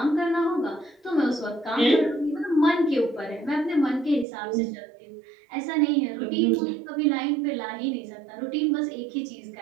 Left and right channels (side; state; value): left; drops out; at 4.2 s